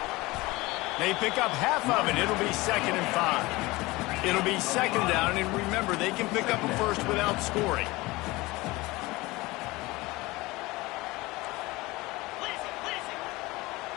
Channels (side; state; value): right; quieter; 21.3 dB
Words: They pick up half of it. It'll be 2nd and 5. It'll be 2nd down, and remember, they can pick up a first without scoring.